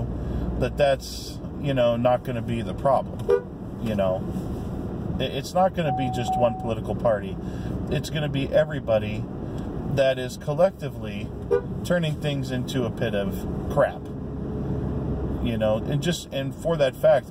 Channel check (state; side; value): identical; both; correlation 1.00